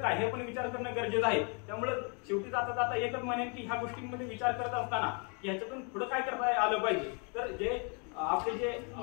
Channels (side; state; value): right; quieter; 36.6 dB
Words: हे पण विचार करणं गरजेचं आहे. त्यामुळे शेवटी जाता जाता एकच म्हणेन की ह्या गोष्टींमध्ये विचार करत असताना ह्याच्यातून पुढे काय करता आलं पाहिजे तर जे आपले जे